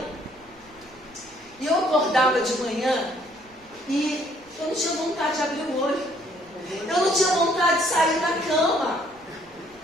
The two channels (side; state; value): right; noise; rumble, 29 dB below the sound